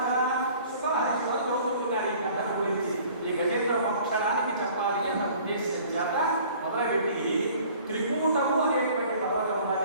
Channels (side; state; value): both; inverted; correlation -0.51